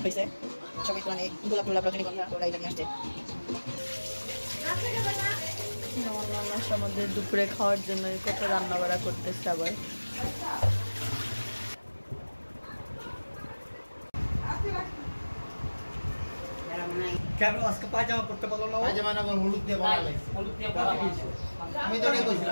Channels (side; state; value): both; inverted; correlation -1.00